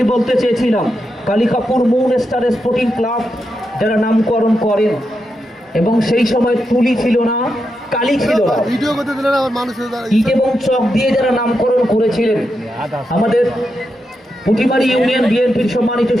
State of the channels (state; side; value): normal; both; correlation 0.86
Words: বলতে চেয়েছিলাম, Kalikapur moon star sporting club যারা নামকরণ করেন, এবং সেই সময় তুলি ছিল না, কালি ছিল না, ইট এবং চক দিয়ে যারা নামকরণ করেছিলেন, আমাদের পুটিমারি ইউনিয়ন বিএনপির সম্মানিত